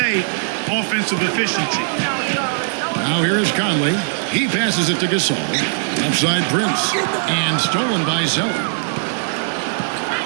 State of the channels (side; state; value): left; silent; digital silence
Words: offensive efficiency. Now here is Conley. He passes it to Gasol. Outside Prince. And stolen by Zeller.